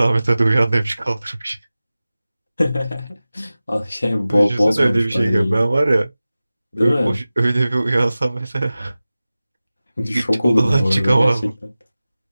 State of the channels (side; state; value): both; inverted; correlation -0.96